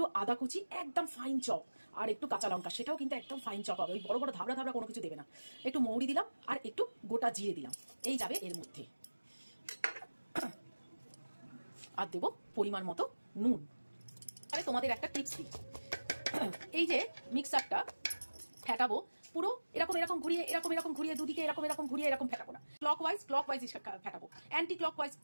আদা কুচি, একদম ফাইন চপ, আর একটু কাঁচা লঙ্কা, সেটাও কিন্তু একদম ফাইন চপ হবে। ওই বড় বড় ধাবড়া ধাবড়া কোনো কিছু দেবে না। একটু মৌরি দিলাম, আর একটু গোটা জিরে দিলাম, এই যাবে এর মধ্যে। আর দেবো পরিমাণ মতো নুন। তাহলে তোমাদের একটা টিপস দিই, এই যে মিক্সারটা ফেটাবো, পুরো এরকম এরকম ঘুরিয়ে, এরকম ঘুরিয়ে, দুদিকে এরকম ঘুরিয়ে এরকম ফেটাবো না। ক্লকওয়াইজ ফেটাবো, অ্যান্টি ক্লকওয়াইজ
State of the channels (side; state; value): both; inverted; correlation -1.00